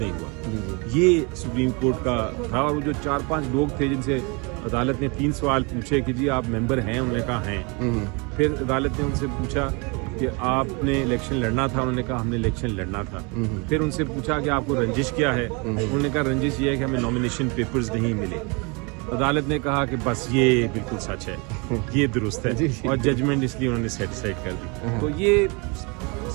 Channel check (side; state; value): left; quieter; 30.6 dB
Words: نہیں ہوا۔ یہ سپریم کورٹ کا تھا، اور وہ جو 4-5 لوگ تھے جن سے عدالت نے 3 سوال پوچھے کہ جی آپ ممبر ہیں، انہوں نے کہا ہیں۔ پھر عدالت نے ان سے پوچھا کہ آپ نے الیکشن لڑنا تھا، انہوں نے کہا ہم نے الیکشن لڑنا تھا۔ پھر ان سے پوچھا کہ آپ کو رنجش کیا ہے، انہوں نے کہا رنجش یہ ہے کہ ہمیں نامینیشن پیپرز نہیں ملے۔ عدالت نے کہا کہ بس یہ بالکل سچ ہے، یہ درست ہے، اور ججمنٹ اس لیے انہوں نے سیٹسفائڈ کر دی۔ تو یہ